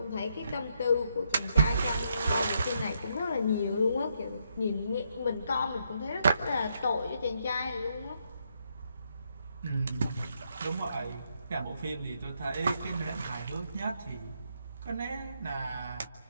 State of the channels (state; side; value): inverted; both; correlation -0.77